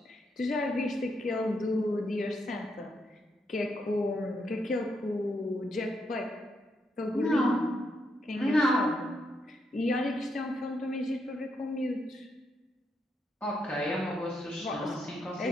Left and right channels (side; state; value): both; normal; correlation 0.79